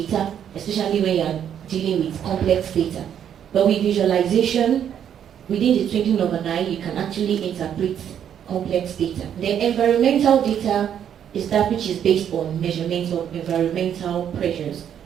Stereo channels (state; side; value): quieter; left; 9.2 dB